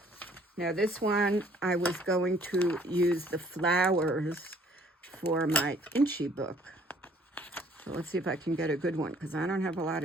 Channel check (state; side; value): normal; both; correlation 0.59